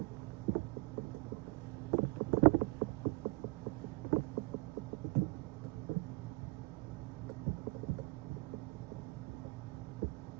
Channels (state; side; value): quieter; left; 26.3 dB